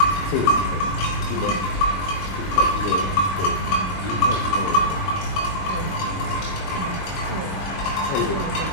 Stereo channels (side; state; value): right; late; 21 ms